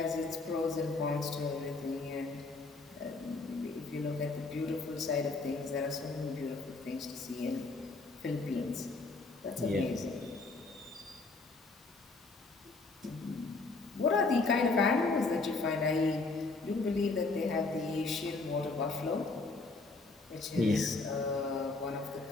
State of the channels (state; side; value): quieter; right; 3.6 dB